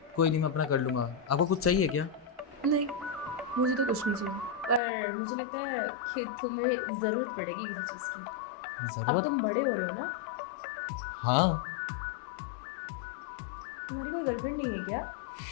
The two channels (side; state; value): right; drops out; at 4.8 s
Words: कोई नहीं, मैं अपना कर लूंगा। आपको कुछ चाहिए क्या? नहीं, मुझे तो कुछ नहीं चाहिए, पर मुझे लगता है कि तुम्हें ज़रूरत पड़ेगी किसी चीज़ की। अब जरूरत? तुम बड़े हो रहे हो ना। हाँ। तुम्हारी कोई गर्लफ्रेंड नहीं है क्या?